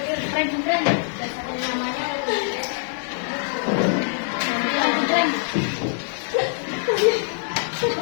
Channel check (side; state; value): right; silent; 63 dB below the other